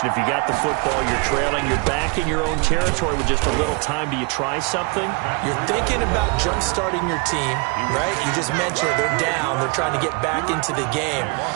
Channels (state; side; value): quieter; left; 32.1 dB